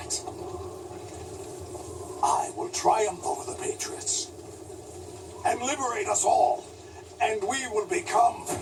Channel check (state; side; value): identical; both; correlation 1.00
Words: I will triumph over the Patriots and liberate us all, and we will become